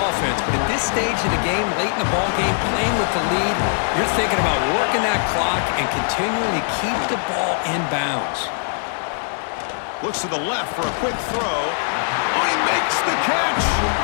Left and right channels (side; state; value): right; silent; 65 dB below the other